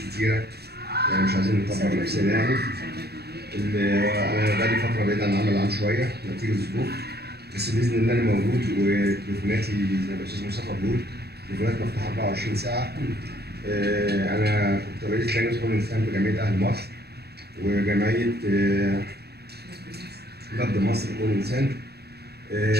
يعني مش عايزين نكبر نفسنا يعني. انا بقالي فتره بعيد عن العمل العام شويه نتيجه الظروف، بس باذن الله انا موجود، وتليفوناتي زي ما الاستاذ مصطفى بيقول تليفونات مفتوحه 24 ساعه. انا كنت رئيس لجنه حقوق الانسان بجمعيه اهل مصر وجمعيه نبض مصر حقوق الانسان.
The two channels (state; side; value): late; left; 0.47 ms